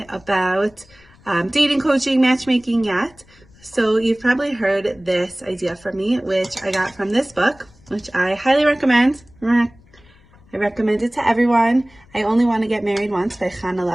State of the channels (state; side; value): noise; left; rumble, 28 dB below the sound